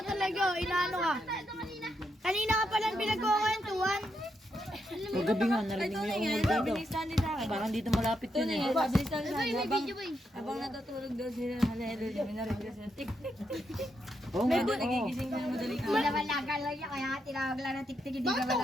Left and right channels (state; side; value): normal; both; correlation 0.81